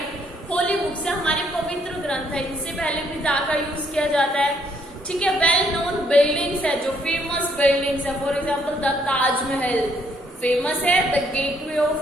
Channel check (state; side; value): normal; both; correlation 0.69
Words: Holy books है हमारे पवित्र ग्रंथ है, इनसे पहले भी दा का यूज किया जाता है, ठीक है। वेल नोन बिल्डिंग्स है, जो फेमस बिल्डिंग्स है, for example the Taj Mahal famous है, द गेटवे